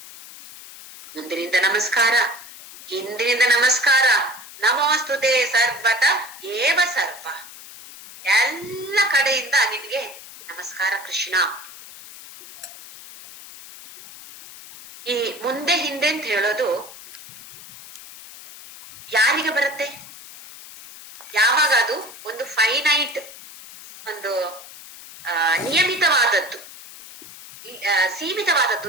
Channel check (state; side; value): noise; left; hiss, 17 dB below the sound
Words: ಮುಂದಿನಿಂದ ನಮಸ್ಕಾರ, ಹಿಂದಿನಿಂದ ನಮಸ್ಕಾರ. ನಮೋಸ್ತುತೆ ಸರ್ವತ ಏವ ಸರ್ವ. ಎಲ್ಲ ಕಡೆಯಿಂದ ನಿನ್ಗೆ ನಮಸ್ಕಾರ ಕೃಷ್ಣ. ಈ ಮುಂದೆ ಹಿಂದೆ ಅಂತ ಹೇಳೋದು ಯಾರಿಗೆ ಬರುತ್ತೆ? ಯಾವಾಗ ಅದು ಒಂದು ಫೈನೈಟ್, ಒಂದು ನಿಯಮಿತವಾದದ್ದು, ಸೀಮಿತವಾದದ್ದು